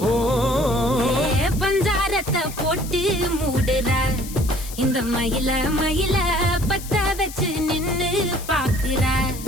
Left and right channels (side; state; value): left; noise; hiss, 13 dB below the sound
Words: ஓ பஞ்சாரத்தை போட்டு மூடுற இந்த மயில மயில பத்த வச்சு நின்னு பாக்குற